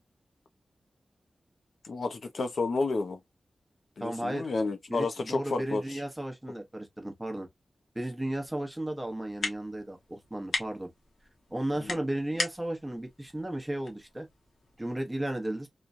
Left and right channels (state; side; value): normal; both; correlation 0.95